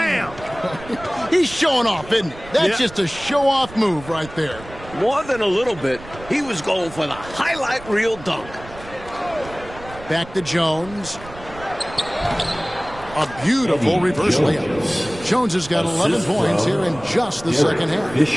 He's showing off, isn't he? That's just a show-off move right there. More than a little bit, he was going for the highlight reel dunk. Back to Jones. A beautiful reverse layup. Jones has got 11 points here in just the second half.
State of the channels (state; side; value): noise; right; rumble, 17 dB below the sound